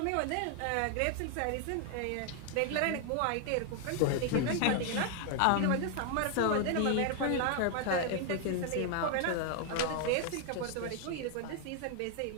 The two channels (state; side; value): different; both; correlation 0.00